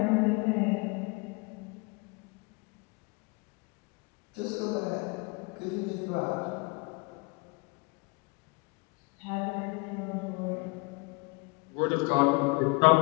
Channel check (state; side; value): quieter; right; 29.0 dB